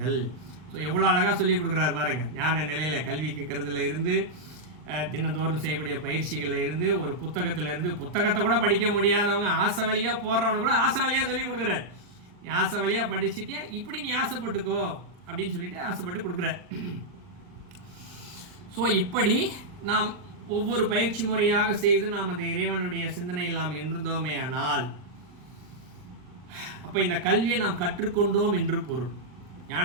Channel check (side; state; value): left; late; 39 ms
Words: ஸோ எவ்வளோ அழகாக சொல்லி கொடுக்குறாரு பாருங்க. ஞான நிலையில் கல்வி கேட்கறதுல இருந்து, தினந்தோறும் செய்யக்கூடிய பயிற்சிகளில் இருந்து, ஒரு புத்தகத்திலேருந்து, புத்தகத்தை கூட படிக்க முடியாதவங்க ஆசை வழியாக போடுறவங்க கூட ஆசை வழியாக சொல்லி கொடுக்குறாரு. நீ ஆசை வழியாக படிச்சுட்டே இப்படி நீ ஆசைப்பட்டுக்கோ அப்படின்னு சொல்லிட்டு ஆசைப்பட்டு கொடுக்குற. ஸோ இப்படி நாம் ஒவ்வொரு பயிற்சி முறையாக செய்து நாம் அந்த இறைவனுடைய சிந்தனையில் நாம் இருந்தோமே ஆனால், அப்போ இந்த கல்வியை நாம் கற்றுக்கொண்டோம் என்று பொருள்.